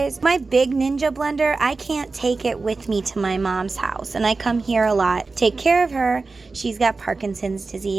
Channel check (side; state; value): left; quieter; 3.9 dB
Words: My big Ninja blender, I can't take it with me to my mom's house, and I come here a lot, take care of her. She's got Parkinson's